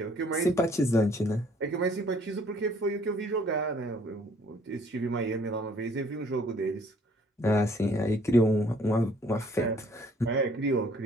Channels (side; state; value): both; normal; correlation 0.60